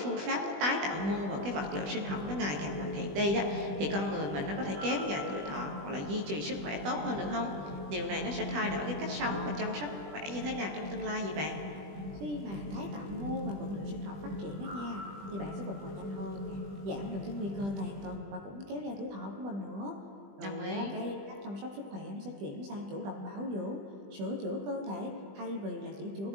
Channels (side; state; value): left; late; 20 ms